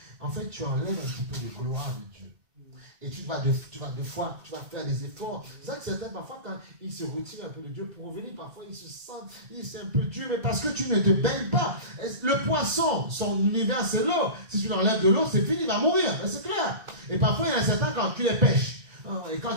en fait, tu enlèves un petit peu de gloire de Dieu. Et tu vas faire des efforts. C'est ça que certains, parfois, quand ils se retirent un peu de Dieu pour revenir, parfois, ils se sentent, c'est un peu dur, mais parce que tu ne te baignes pas. Le poisson, son univers, c'est l'eau. Si tu l'enlèves de l'eau, c'est fini, il va mourir. C'est clair. Et parfois, il y en a certains, quand tu les pêches, et quand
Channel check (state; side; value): late; left; 2.0 ms